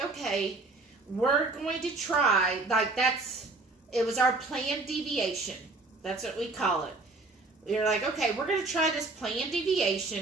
okay, we're going to try, like it was our planned deviation. That's what we call it. We were like, okay, we're going to try this planned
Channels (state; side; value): quieter; left; 3.4 dB